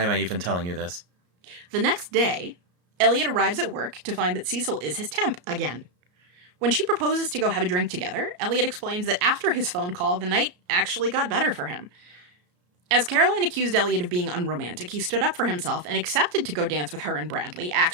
am I even telling you this? The next day, Elliot arrives at work to find that Cecil is his temp again. When she proposes to go have a drink together, Elliot explains that after his phone call, the night actually got better for him. As Caroline accused Elliot of being unromantic, he stood up for himself and accepted to go dance with her and Bradley,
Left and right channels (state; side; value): late; left; 34 ms